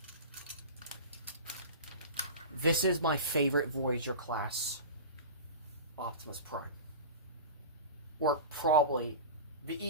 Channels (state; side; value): inverted; both; correlation -0.31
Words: this is my favorite Voyager class. Optimus Prime. Or probably, the